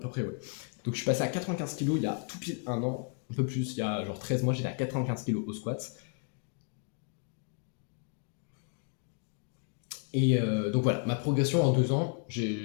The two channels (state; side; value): quieter; right; 39.8 dB